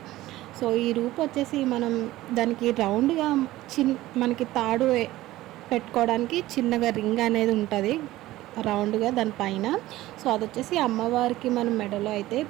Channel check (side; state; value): left; quieter; 16.5 dB